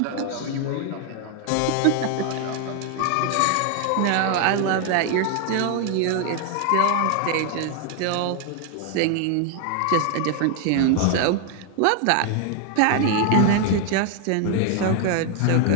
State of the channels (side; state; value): both; different; correlation 0.00